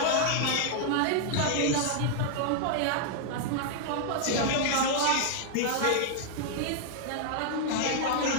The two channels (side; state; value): both; different; correlation -0.01